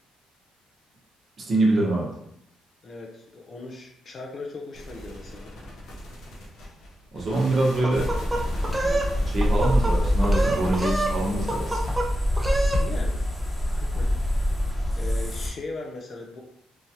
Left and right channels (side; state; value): both; normal; correlation 0.90